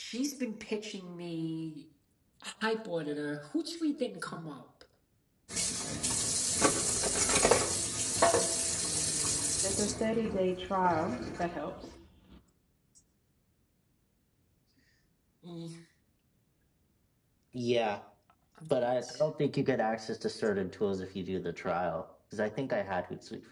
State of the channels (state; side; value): identical; both; correlation 1.00